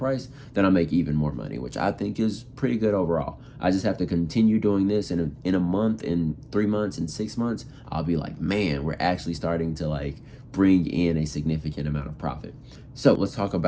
then I make even more money, which I think is pretty good overall. I just have to continue doing this in a month, in 3 months, in 6 months, I'll be like, man, we're actually starting to like bring in a significant amount of profit. So let's talk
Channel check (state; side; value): identical; both; correlation 1.00